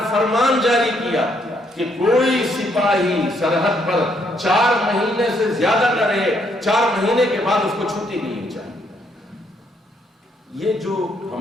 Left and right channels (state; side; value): normal; both; correlation 0.72